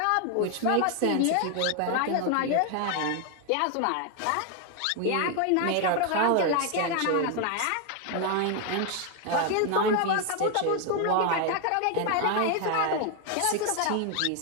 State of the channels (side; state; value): both; different; correlation 0.01